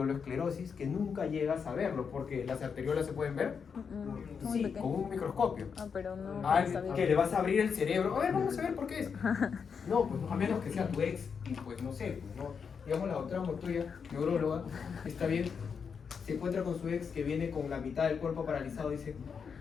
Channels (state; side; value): quieter; right; 6.2 dB